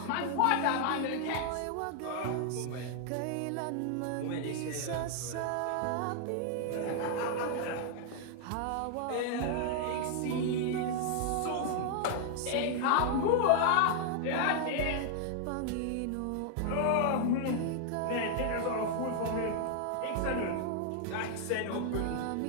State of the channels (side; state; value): both; different; correlation 0.00